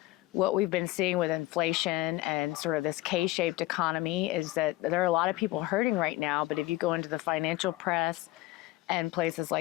what we've been seeing with inflation and sort of this K-shaped economy is that there are a lot of people hurting right now, but if you go into the financial press and places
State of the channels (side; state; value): right; quieter; 17.7 dB